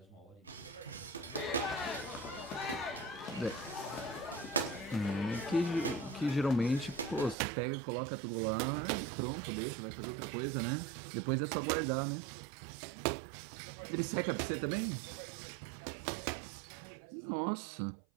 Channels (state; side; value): drops out; left; at 7.4 s